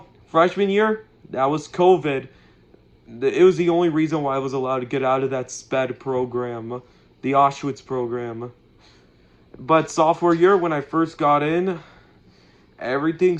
freshman year, that was COVID. It was the only reason why I was allowed to get out of that SPED program, the Auschwitz program. But sophomore year, when I first got in, everything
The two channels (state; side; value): identical; both; correlation 1.00